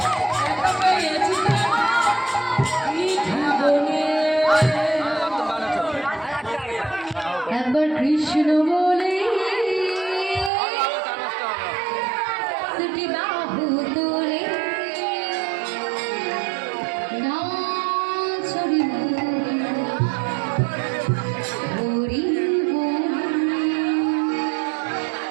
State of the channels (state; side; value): drops out; left; at 10.5 s